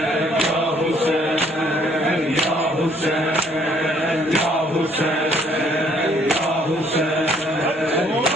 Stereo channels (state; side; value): normal; both; correlation 0.63